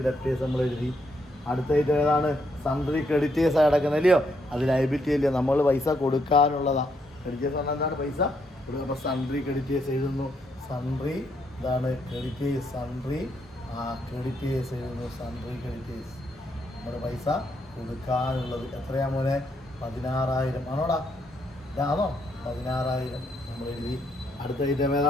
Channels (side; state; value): both; normal; correlation 0.76